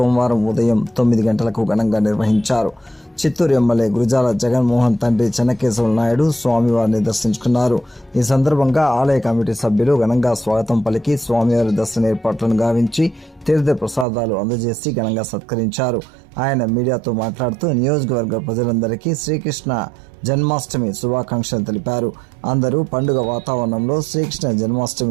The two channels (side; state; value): left; drops out; at 14.1 s